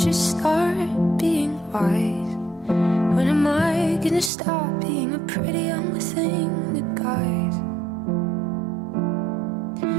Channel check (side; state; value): left; drops out; at 4.3 s